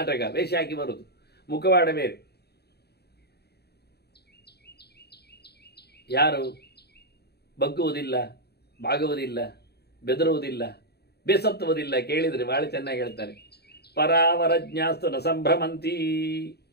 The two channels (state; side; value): late; right; 0.47 ms